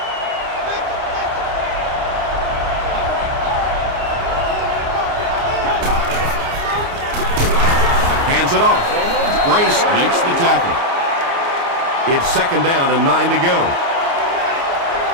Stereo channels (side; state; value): left; late; 29 ms